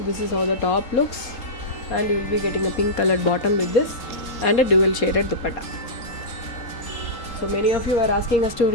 this is how the top looks, and you will be getting a pink colored bottom with this and a dual shaded dupatta. So many of you are asking us to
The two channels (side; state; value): right; late; 3.8 ms